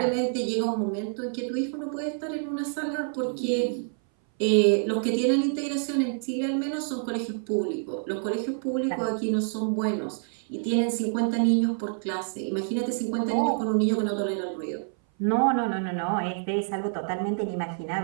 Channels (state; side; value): silent; left; 58 dB below the other